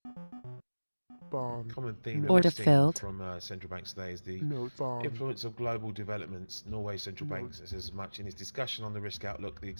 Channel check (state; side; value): inverted; both; correlation -1.00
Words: bond, Common theme that Order we've seen filled. from central banks today is the notes, bond, influence of global developments. Norway's central bank says as much in its discussion on the risk outlook. The